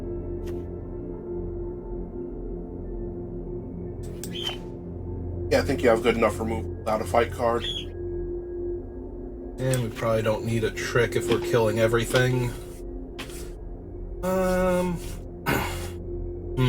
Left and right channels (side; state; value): both; identical; correlation 1.00